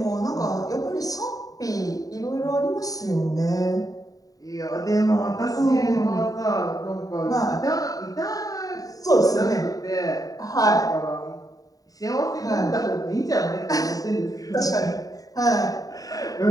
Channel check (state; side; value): late; right; 0.18 ms